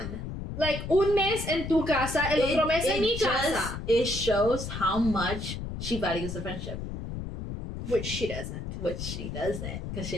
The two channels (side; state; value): left; noise; rumble, 7 dB below the sound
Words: Like, un mes en tu casa, el otro mes en mi casa. It shows how much she values the friendship. Which she doesn't. Because